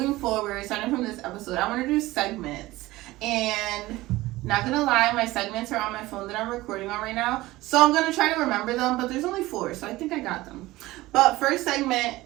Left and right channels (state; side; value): quieter; left; 18.4 dB